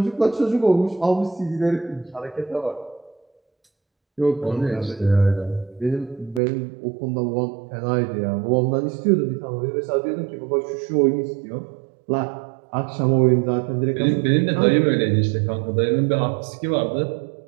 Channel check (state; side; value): drops out; left; at 6.4 s